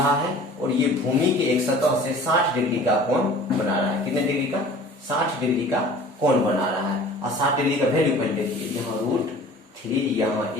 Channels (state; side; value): normal; both; correlation 0.46